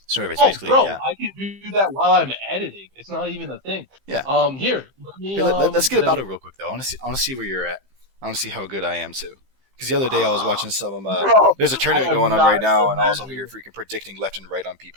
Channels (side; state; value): left; late; 15 ms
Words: So it's basically, bro, yeah. I can do that while I'm editing. It's not even a thing. Yeah. Let's get a battle real quick though. I want to see where you're at. I want to see how good I am too. Because the other day I was watching some of them. There's a tournament going on right now, and I was over here freaking predicting left and right on